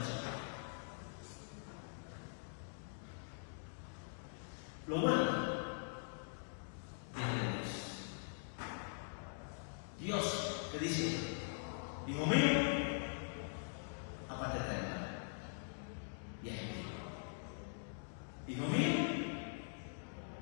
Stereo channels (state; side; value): silent; right; digital silence